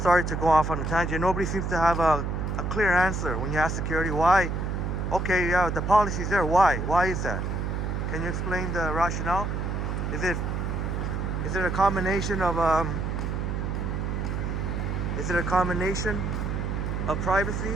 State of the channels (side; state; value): right; noise; hum, 2 dB below the sound